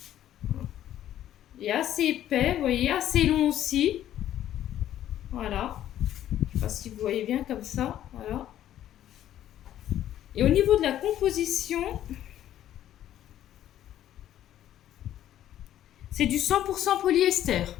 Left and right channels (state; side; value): quieter; right; 11.9 dB